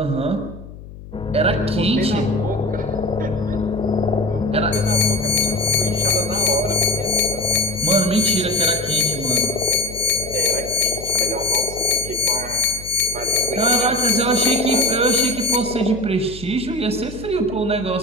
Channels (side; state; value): left; noise; hum, 15 dB below the sound